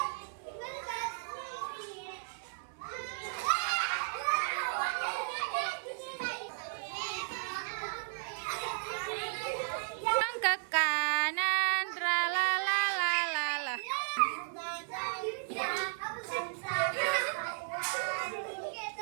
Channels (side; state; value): left; silent; 55 dB below the other